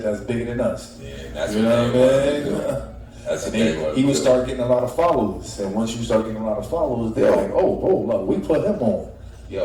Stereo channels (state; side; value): identical; both; correlation 1.00